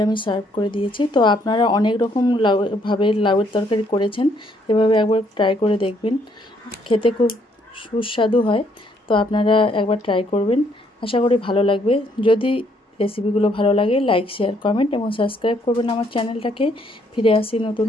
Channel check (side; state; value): both; normal; correlation 0.69